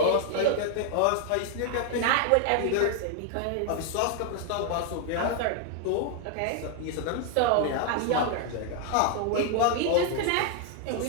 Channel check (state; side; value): different; both; correlation 0.00